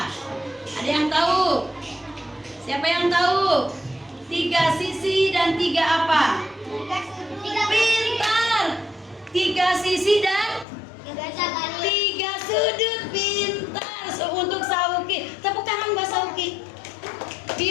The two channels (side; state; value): right; drops out; at 10.7 s